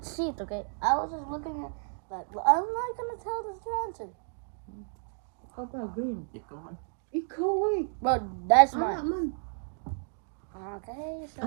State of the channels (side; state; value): left; silent; digital silence